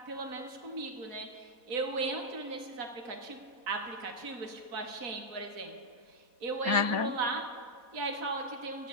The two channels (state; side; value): late; left; 4.1 ms